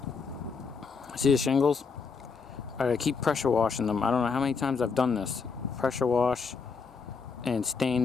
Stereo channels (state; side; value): quieter; right; 5.2 dB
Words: See the shingles? I keep pressure washing them. I don't know how many times I've done this. Pressure wash and